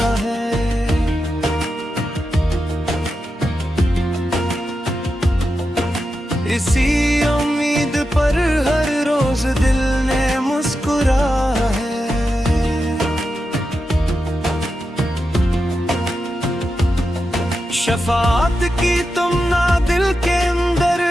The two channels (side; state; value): both; normal; correlation 0.89